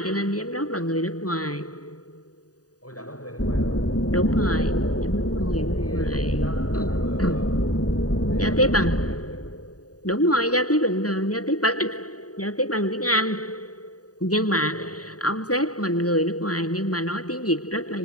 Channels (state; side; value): late; right; 0.68 ms